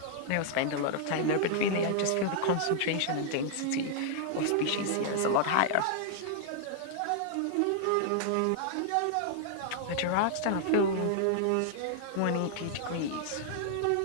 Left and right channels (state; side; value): different; both; correlation -0.01